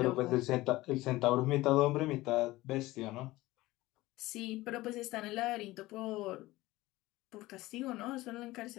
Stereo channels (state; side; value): quieter; right; 18.6 dB